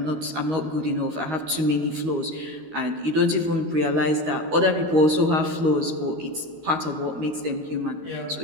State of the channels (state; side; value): late; left; 13 ms